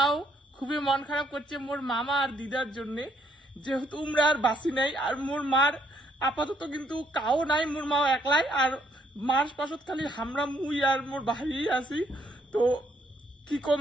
খুবই মন খারাপ করছে মোর মামা আর দিদার জন্য, যেহেতু উমরা আর বাসি নাই। আর মোর মার আপাতত কিন্তু কাও নাই, মোর মাও একলাই। আর মার পাশত খালি হামরা মুই আর মোর ভাই আছি। তো কি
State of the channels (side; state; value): both; normal; correlation 0.70